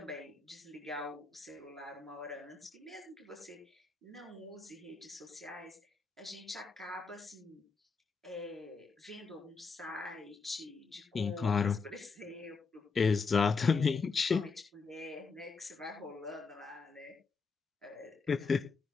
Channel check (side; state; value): right; quieter; 4.8 dB